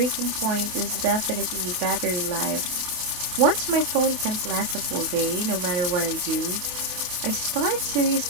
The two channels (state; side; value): late; left; 28 ms